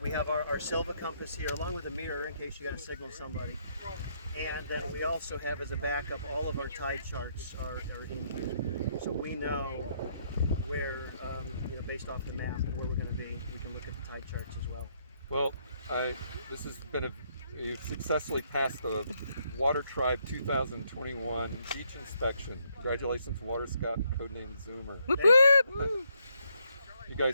we have our Silva compass here along with a mirror in case you got to signal somebody. And then we also have as a backup all of our tide charts are in here. So we know where, based off the map, where we're going to be. We can look at the tide charts as well. Well, this has been you successfully passed the Water Tribe 2021 beach inspection. Congratulations, Water Scout and codename Zoomer. Whoop, Thank whoop. You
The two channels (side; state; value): both; inverted; correlation -0.73